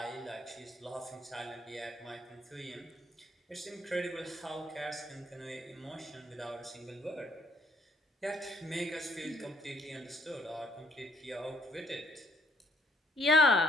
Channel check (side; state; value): both; normal; correlation 0.65